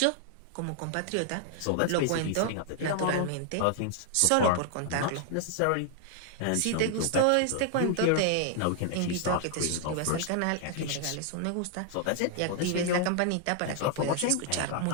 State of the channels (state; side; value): different; both; correlation 0.00